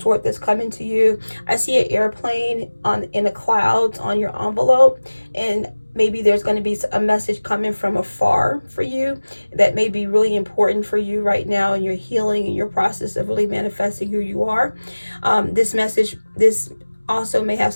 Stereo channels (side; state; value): both; inverted; correlation -1.00